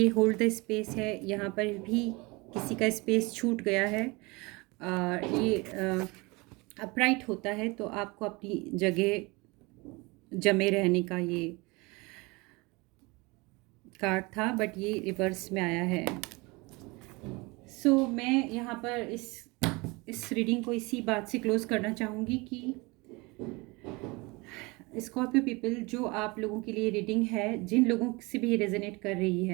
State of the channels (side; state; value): left; quieter; 25.5 dB